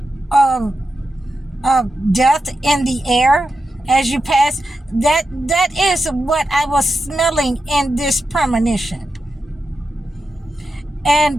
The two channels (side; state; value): both; normal; correlation 0.89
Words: of death in the air as you pass? That is what I was smelling in this premonition.